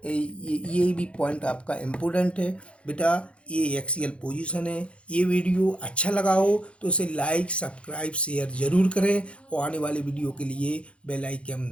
ये भी पॉइंट आपका इम्पोर्टेंट है बेटा। ये एक्सियल पोजीशन है। ये वीडियो अच्छा लगा हो तो इसे लाइक सब्सक्राइब शेयर ज़रूर करें और आने वाले वीडियो के लिए बेल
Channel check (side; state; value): right; late; 0.060 ms